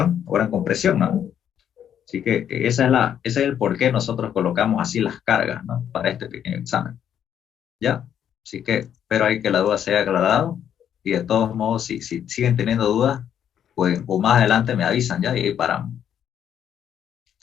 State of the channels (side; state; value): right; quieter; 9.4 dB